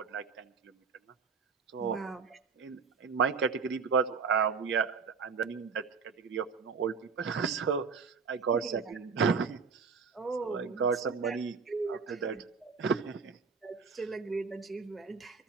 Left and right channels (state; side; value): quieter; left; 5.4 dB